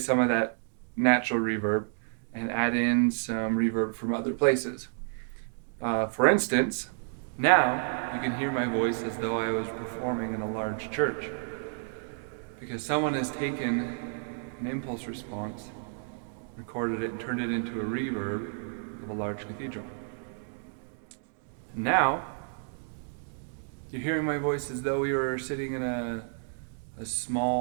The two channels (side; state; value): left; silent; digital silence